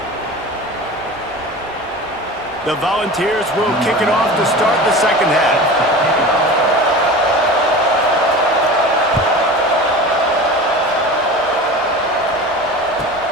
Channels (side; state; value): both; normal; correlation 0.34